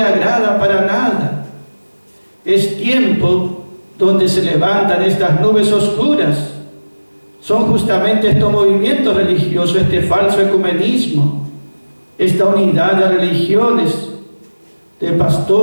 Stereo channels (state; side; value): inverted; both; correlation -1.00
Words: agrada para nada. Es tiempo donde se levantan estas nubes oscuras. Son justamente estos movimientos religiosos, este falso ecumenismo, esta unidad de religiones, de